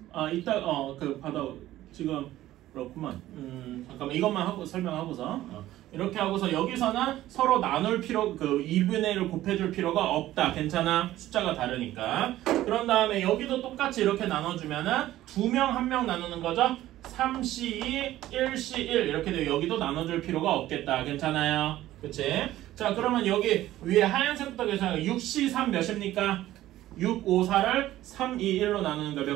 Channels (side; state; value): left; quieter; 14.6 dB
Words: 탔어. 이따 그 받아 지금 그렇구만. 잠깐만 이것만 하고 설명하고서 이렇게 하고서 여기서는 서로 나눌 필요 그 2분의 1을 곱해줄 필요가 없다. 괜찮아? 숫자가 다르니까. 그런 다음에 여기도 똑같이 이렇게 나눠주면은 2명 1명 나누는 거죠. 3C2, 1C1 이렇게 되고 여기도 나눠줄 필요가 없겠다. 괜찮아요? 그치? 자 그러면 여기 위에 하얀색부터 계산하면 6C3 몇입니까? 6, 5, 4를 3, 2, 1로 나누는 거